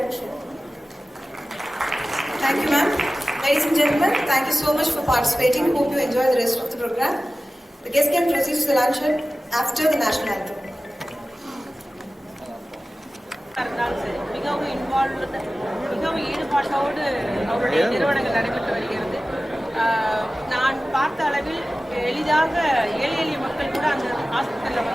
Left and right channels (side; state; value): both; normal; correlation 0.96